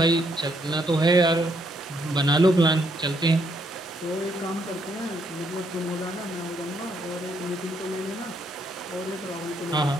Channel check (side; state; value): both; normal; correlation 0.73